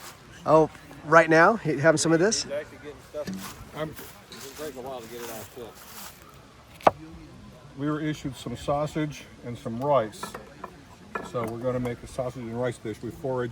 Oh, right now, having some of this? He's actually getting stuff. It's taking a while to get it all cooked. We were issued some sausage and some rice. So we're going to make a sausage and rice dish. We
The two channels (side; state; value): both; identical; correlation 1.00